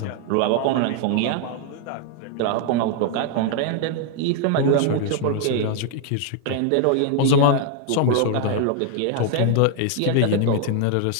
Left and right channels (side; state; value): both; different; correlation 0.00